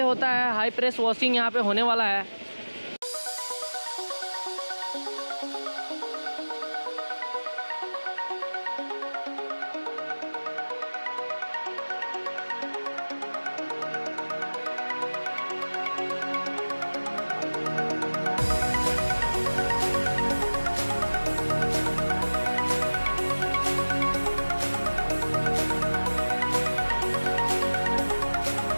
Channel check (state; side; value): inverted; both; correlation -1.00